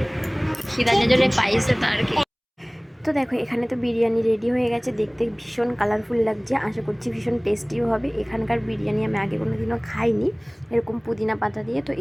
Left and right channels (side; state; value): both; identical; correlation 1.00